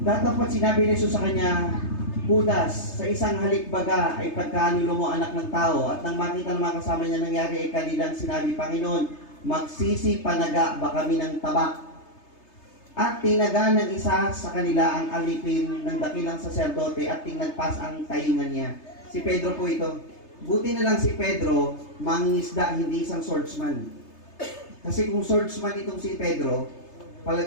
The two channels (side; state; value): right; late; 3.3 ms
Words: Datapat sinabi ni Jesus sa kanya, Judas, sa isang halikbaga ay pagkanulo mo anak ng tao. At nang makita ng mga kasama niya nangyari ay kanilang sinabi, Panginoon, magsisi panaga ba kami ng tabak? At tinaga ng isa sa kanila ang alipin ng dakilang saserdote at tinagpas ang taingan niya. Si Pedro po ito. Buti na lang si Pedro, mangingisda, hindi isang swordsman. Kasi kung swordsman itong si Pedro,